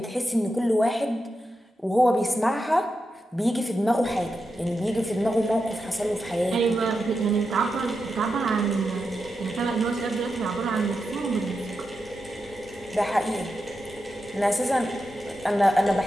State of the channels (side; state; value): both; normal; correlation 0.88